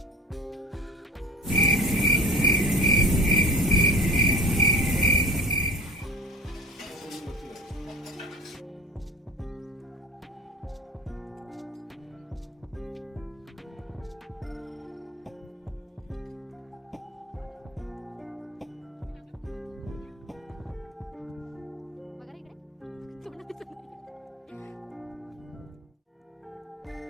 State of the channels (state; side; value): normal; both; correlation 0.37